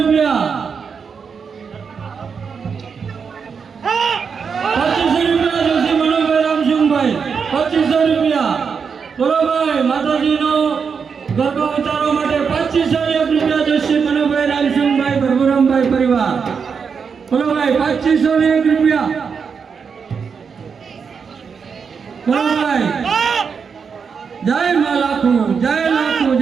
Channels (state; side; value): quieter; left; 6.0 dB